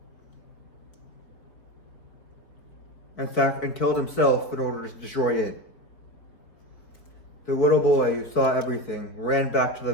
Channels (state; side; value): late; right; 4.7 ms